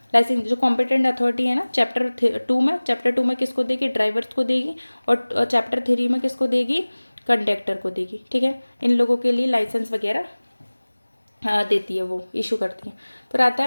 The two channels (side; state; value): both; inverted; correlation -1.00